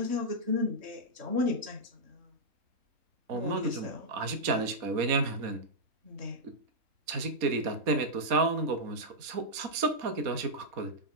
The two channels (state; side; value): late; left; 4.1 ms